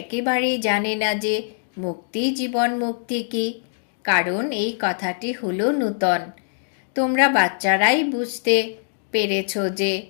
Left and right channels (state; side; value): silent; right; digital silence